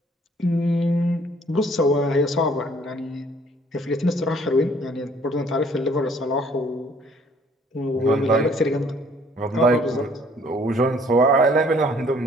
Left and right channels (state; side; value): normal; both; correlation 0.59